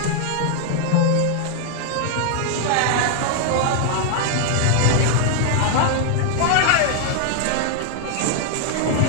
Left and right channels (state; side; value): different; both; correlation 0.00